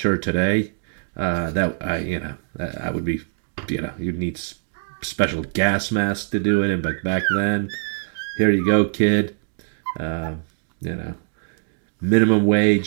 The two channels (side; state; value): left; silent; digital silence